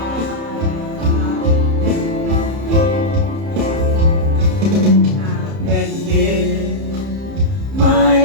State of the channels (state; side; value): late; left; 30 ms